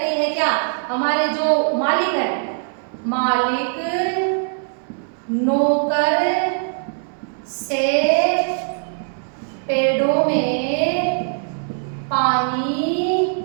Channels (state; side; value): silent; left; 62 dB below the other